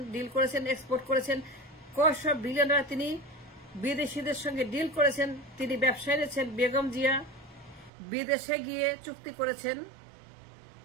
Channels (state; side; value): drops out; left; at 7.9 s